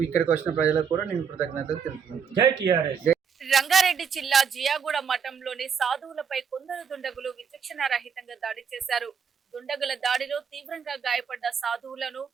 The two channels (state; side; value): quieter; left; 6.8 dB